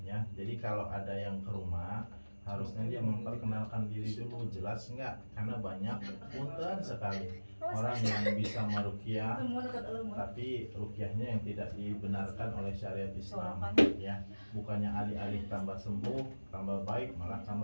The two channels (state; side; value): inverted; both; correlation -1.00